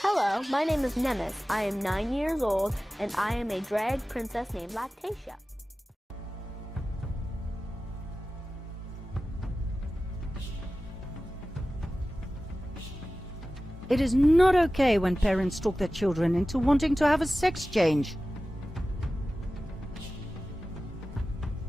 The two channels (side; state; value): both; normal; correlation 0.95